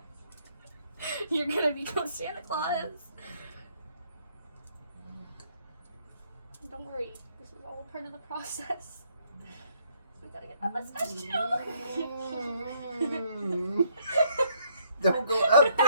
You're gonna become Santa Claus. Don't worry. This is all part of the process. We gotta get that mustache too. Don't go up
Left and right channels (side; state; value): both; inverted; correlation -0.68